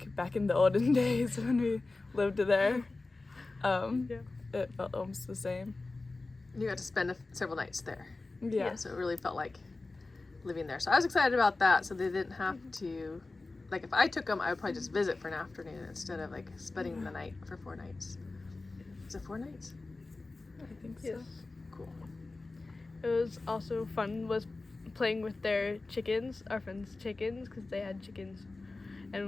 back in the olden days when we lived there. It felt almost the same. You got to spend several nights there. Yeah. So it really felt like living there. So I was excited about that, so they didn't have to, like if I took them, I would probably just visit for an afternoon instead of like spending the night for 4 nights. Is it 4 nights? I think so. Yes. Cool. It was also fun was playing with their chickens, our friends' chickens, because they had chickens,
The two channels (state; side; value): quieter; right; 3.4 dB